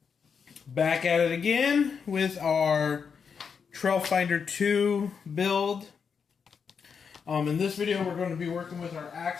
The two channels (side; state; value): right; quieter; 6.3 dB